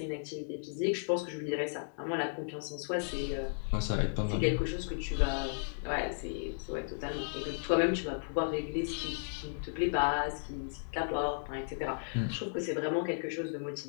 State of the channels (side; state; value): right; silent; digital silence